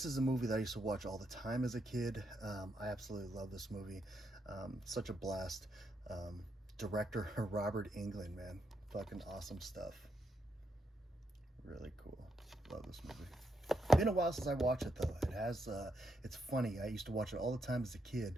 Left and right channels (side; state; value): both; normal; correlation 0.80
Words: is a movie that I used to watch all the time as a kid. I absolutely love this movie. Such a blast. Director Robert Englund, man. Fucking awesome stuff. Really cool. Love this movie. Been a while since I watched it though. It has, it's funny. I used to watch it all the time as a kid,